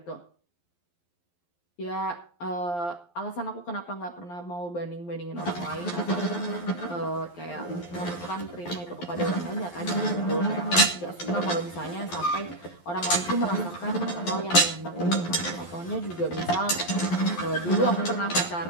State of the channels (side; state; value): right; late; 11 ms